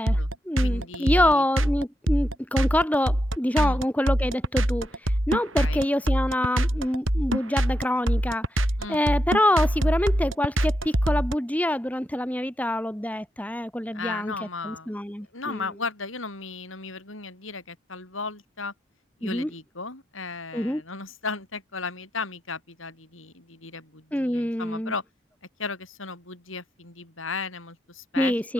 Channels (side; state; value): both; normal; correlation 0.84